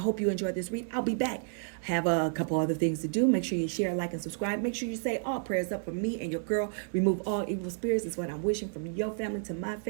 you enjoyed this read. I'll be back. Have a couple other things to do. Make sure you share, like, and subscribe. Make sure you say all prayers up for me and your girl. Remove all evil spirits is what I'm wishing from your family to my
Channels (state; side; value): silent; left; digital silence